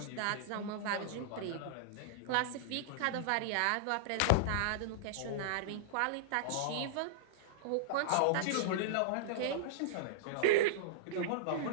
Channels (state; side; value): different; both; correlation -0.02